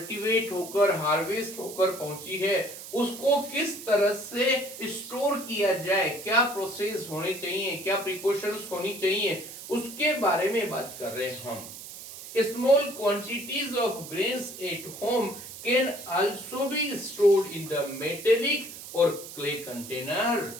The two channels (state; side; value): noise; right; hiss, 13 dB below the sound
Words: होकर हार्वेस्ट होकर पहुंची है उसको किस तरह से स्टोर किया जाए, क्या प्रोसेस होने चाहिए, क्या प्रिकॉशंस होनी चाहिए, उसके बारे में बात कर रहे हैं हम। Small quantities of grains at home can also be stored in the metallic or clay container.